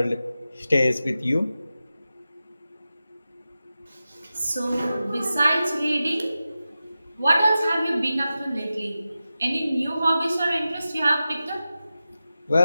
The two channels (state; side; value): inverted; both; correlation -0.93